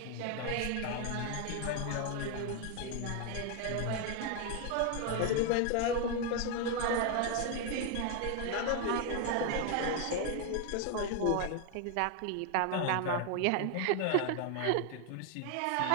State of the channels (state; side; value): different; both; correlation 0.01